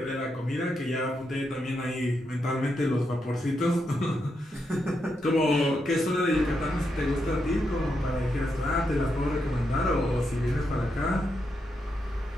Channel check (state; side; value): normal; both; correlation 0.83